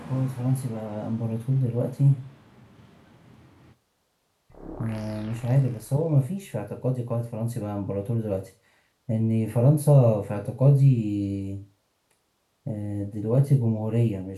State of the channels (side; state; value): both; identical; correlation 1.00